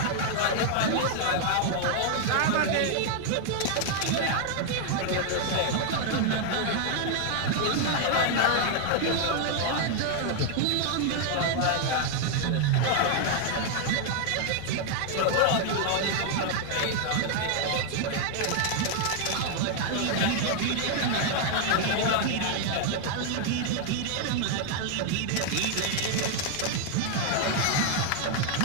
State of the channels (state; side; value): different; both; correlation 0.00